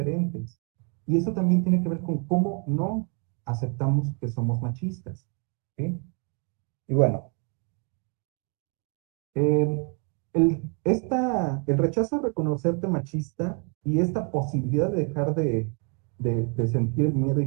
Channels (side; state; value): left; quieter; 37.5 dB